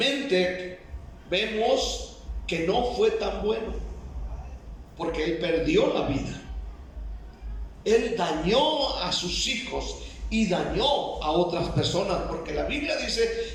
vemos que no fue tan bueno, porque él perdió la vida. Él dañó a sus hijos y dañó a otras personas, porque la Biblia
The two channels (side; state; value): both; identical; correlation 1.00